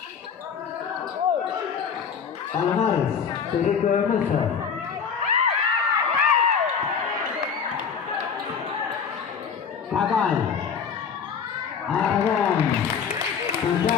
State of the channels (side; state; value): right; quieter; 6.7 dB